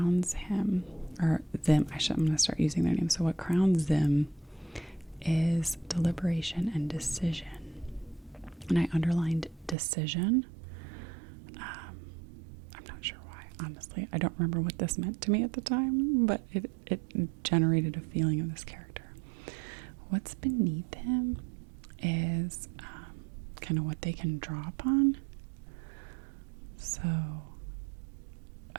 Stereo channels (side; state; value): left; drops out; at 9.8 s